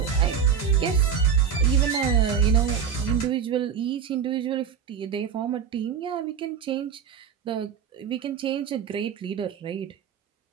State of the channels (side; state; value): left; quieter; 7.4 dB